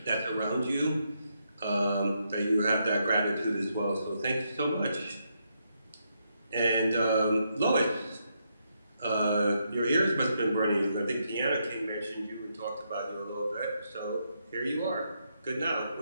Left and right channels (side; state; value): both; inverted; correlation -0.79